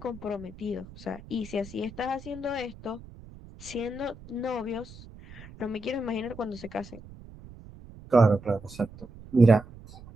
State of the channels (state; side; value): noise; right; rumble, 18 dB below the sound